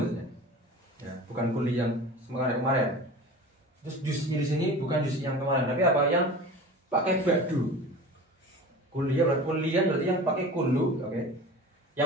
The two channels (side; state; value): both; normal; correlation 0.36